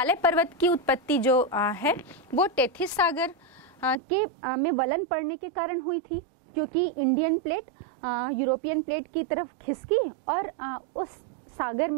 पर्वत की उत्पत्ति जो है वो टेथिस सागर के में वलन पड़ने के कारण हुई थी, क्योंकि इंडियन प्लेट यूरोपियन प्लेट की तरफ खिसकी और उस सागर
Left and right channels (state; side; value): drops out; left; at 4.0 s